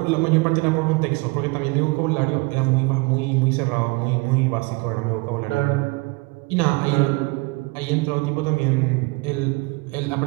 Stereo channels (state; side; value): quieter; left; 25.6 dB